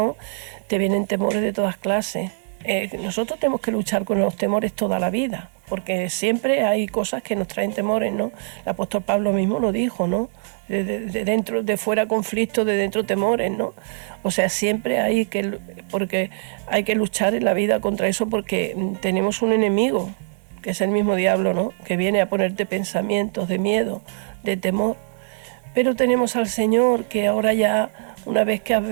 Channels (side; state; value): left; silent; 63 dB below the other